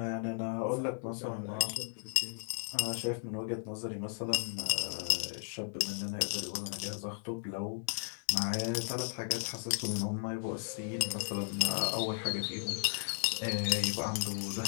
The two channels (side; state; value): right; silent; digital silence